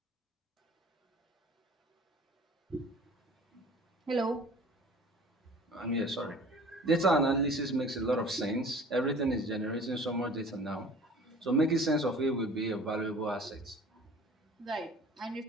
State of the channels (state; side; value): normal; both; correlation 0.46